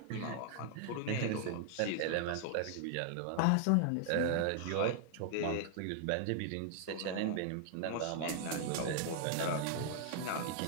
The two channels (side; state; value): both; different; correlation 0.00